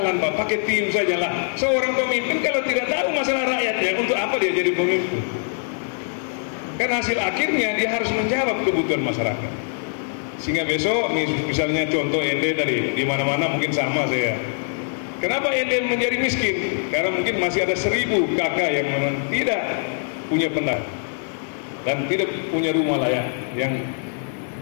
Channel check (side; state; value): right; silent; 64 dB below the other